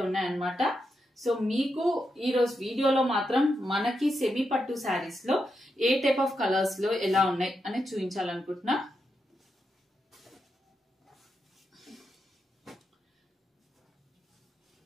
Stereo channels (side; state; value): both; normal; correlation 0.85